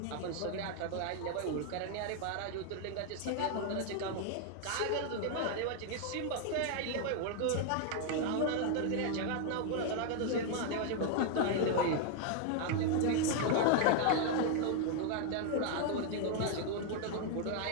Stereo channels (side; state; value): both; different; correlation 0.00